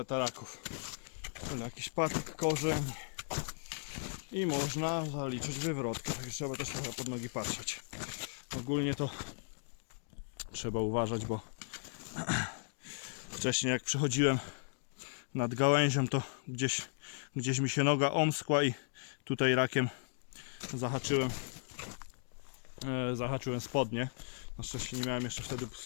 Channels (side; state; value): right; silent; digital silence